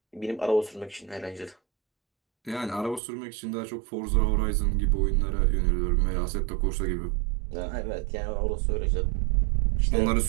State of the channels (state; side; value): drops out; left; at 3.0 s